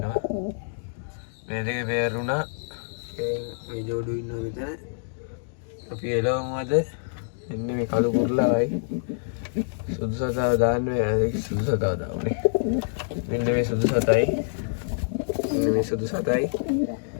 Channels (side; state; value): right; silent; digital silence